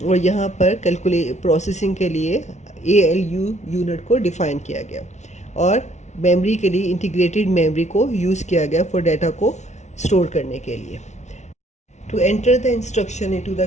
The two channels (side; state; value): right; late; 0.33 ms